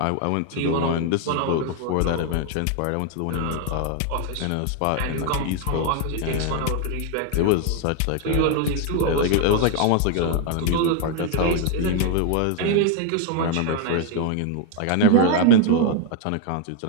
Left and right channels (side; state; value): both; different; correlation 0.00